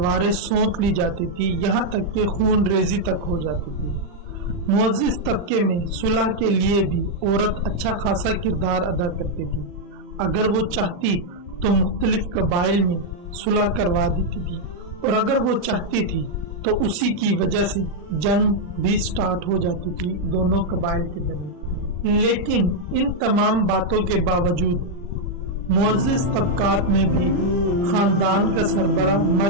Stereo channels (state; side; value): late; left; 40 ms